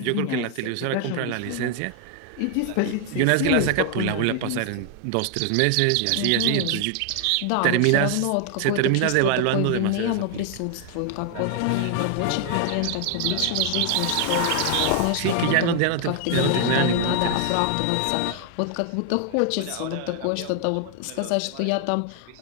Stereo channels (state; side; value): different; both; correlation 0.00